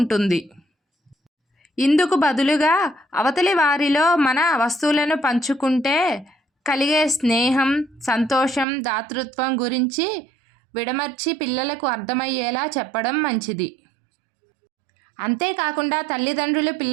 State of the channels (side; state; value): left; drops out; at 8.7 s